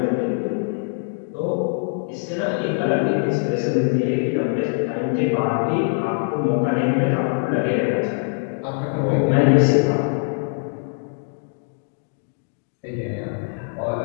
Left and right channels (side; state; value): right; silent; 64 dB below the other